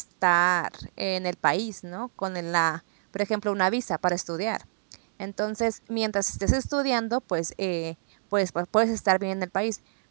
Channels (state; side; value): silent; left; digital silence